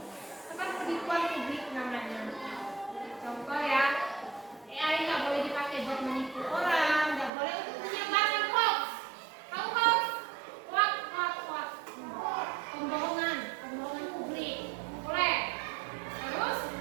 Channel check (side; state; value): left; drops out; at 7.3 s